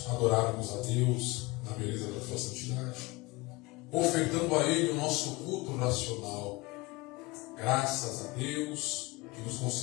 adorarmos a Deus na beleza da sua santidade, ofertando a Ele o nosso culto racional. Graças a Deus que nos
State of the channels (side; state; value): right; quieter; 23.2 dB